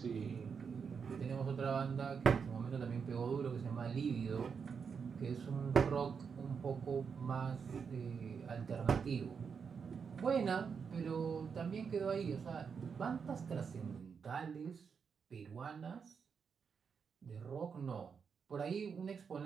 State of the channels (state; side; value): quieter; left; 6.2 dB